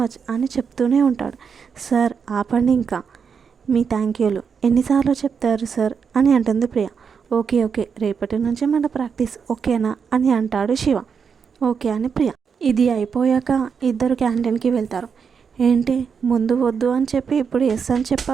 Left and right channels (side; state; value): left; quieter; 6.3 dB